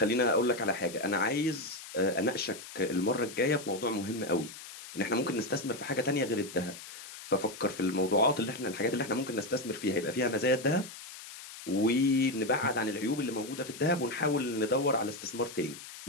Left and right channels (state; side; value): noise; left; hiss, 14 dB below the sound